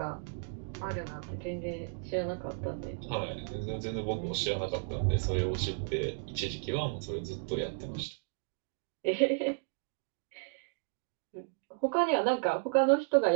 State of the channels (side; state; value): left; silent; digital silence